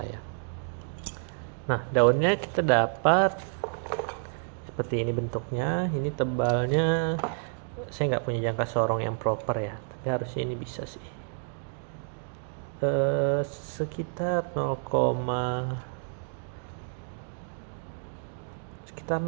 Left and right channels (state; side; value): silent; left; 58 dB below the other